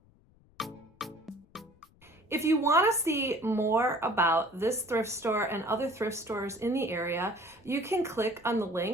If you want to see more about this thrift store and other thrift stores in the area, you can click on the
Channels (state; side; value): noise; left; rumble, 30 dB below the sound